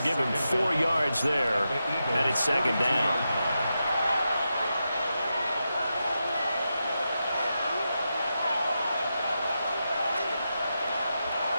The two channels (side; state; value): both; inverted; correlation -0.88